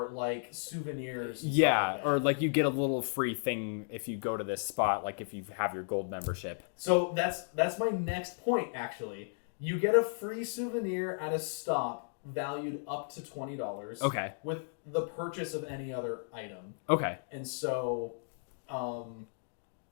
like souvenirs. And Yeah, stuff like that. or like you get a little free thing if you go to this spot, like if you have your gold membership. So that's my next point. Actually, you get a free souvenir at a stop valued up to $20. Okay. With the purchase of any other item. Okay. And so,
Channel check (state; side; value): silent; right; digital silence